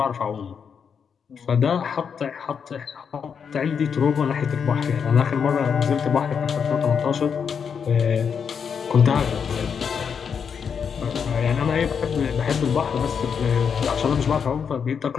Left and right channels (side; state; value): right; quieter; 6.8 dB